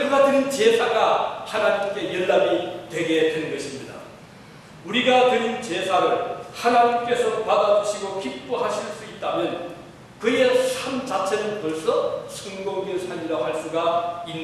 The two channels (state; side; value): identical; both; correlation 1.00